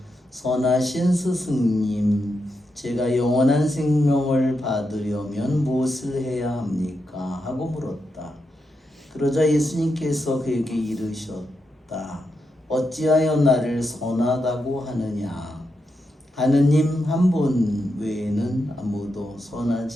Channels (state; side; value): normal; both; correlation 0.85